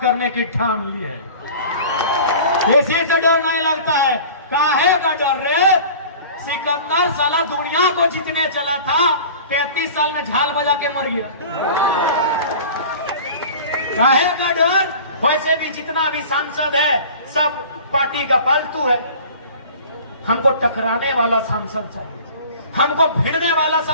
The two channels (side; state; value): both; inverted; correlation -0.42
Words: करने की ठान ली है। इसी से डर नहीं लगता है। काहे का डर रे? सिकंदर साला दुनिया को जीतने चला था, 33 साल में झाल बजा के मर गया। काहे का डर? वैसे भी जितना भी सांसद है सब पार्टी का पालतू है। हमको टकराने वाला सांसद चाहिए, हमको भिड़ने वाला